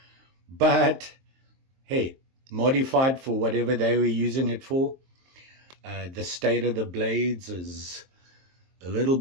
But hey, modified for whatever they were using it for. The state of the blades is a little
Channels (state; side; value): late; left; 23 ms